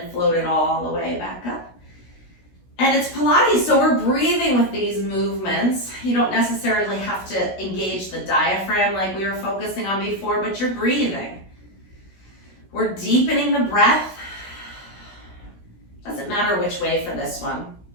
float it all the way back up. And it's Pilates, so we're breathing with these movements. You don't necessarily have to engage the diaphragm like we were focusing on before, but you're breathing. We're deepening the breath. Doesn't matter which way for this one.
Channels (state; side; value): late; right; 16 ms